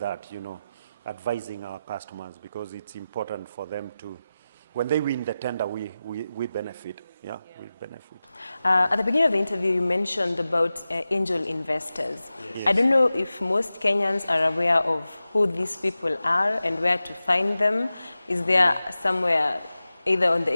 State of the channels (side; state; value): both; inverted; correlation -0.94